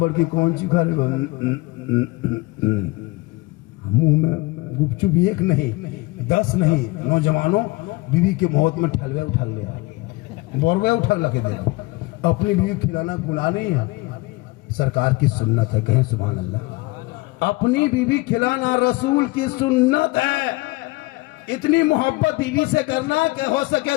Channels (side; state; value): right; quieter; 23.0 dB